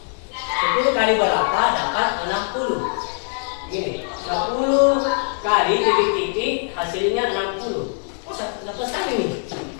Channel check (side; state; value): right; silent; 64 dB below the other